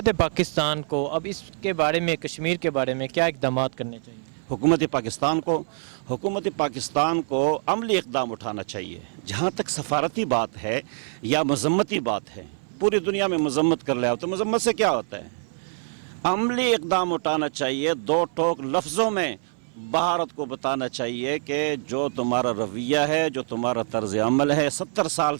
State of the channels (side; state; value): left; silent; 60 dB below the other